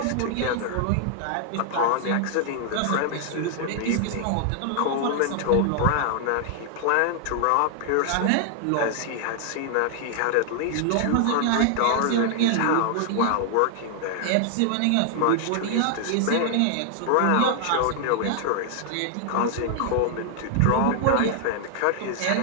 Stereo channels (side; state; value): both; different; correlation 0.00